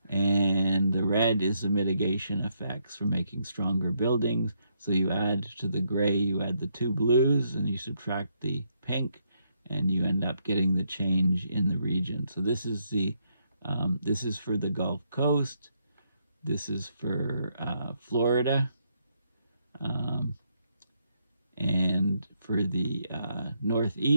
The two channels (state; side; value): inverted; both; correlation -0.76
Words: And the red is the mitigation effects for making stronger buildings. So you add to the gray, you add the two blues, and you subtract the pink, and you end up getting the change in the region. So this is for the Gulf Coast. This is for Florida, and for the